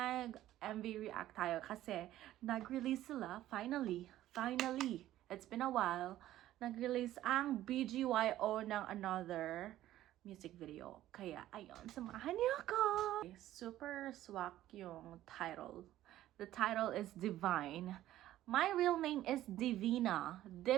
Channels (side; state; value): left; quieter; 13.8 dB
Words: react tayo kasi nag-release sila, finally, it's been a while, nag-release ang BGYO ng Another music video. Kaya, ayun, samahan niyo ako! Super swak yung title. The title is Divine. My real name is Divina.